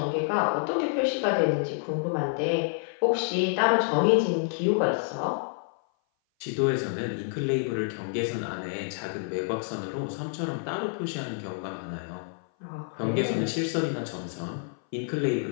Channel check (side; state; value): right; silent; 57 dB below the other